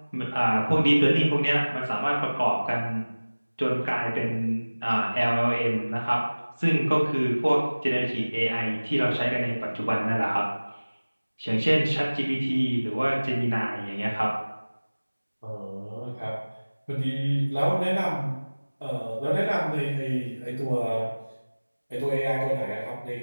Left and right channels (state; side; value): inverted; both; correlation -1.00